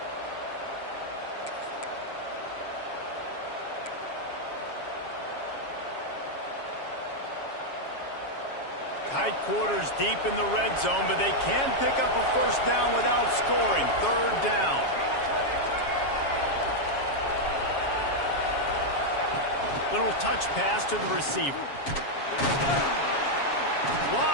Tight quarters deep in the red zone, but they can pick up a first down without scoring. 3rd down. Little touch pass to the receiver.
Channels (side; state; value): right; late; 7.3 ms